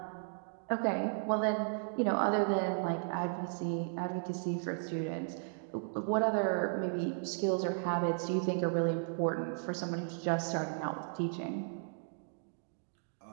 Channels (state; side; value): silent; left; digital silence